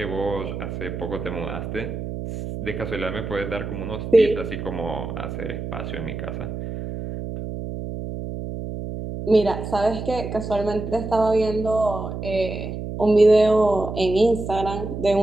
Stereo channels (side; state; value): right; noise; hum, 6 dB below the sound